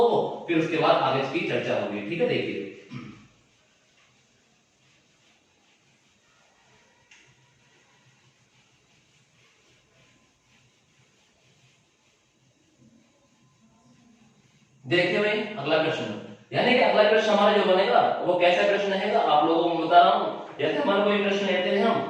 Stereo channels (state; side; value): identical; both; correlation 1.00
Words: को, फिर उसके बाद आगे इसकी चर्चा होगी। ठीक है, देखिए देखिए भाई अगला प्रश्न, यानी कि अगला प्रश्न हमारा जो बनेगा वो कैसा प्रश्न रहेगा आप लोगों को बता रहा हूं। जैसे हमारा कोई प्रश्न लेते हैं